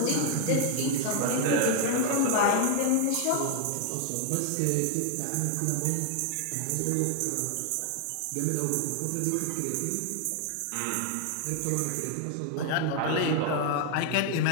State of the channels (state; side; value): different; both; correlation 0.00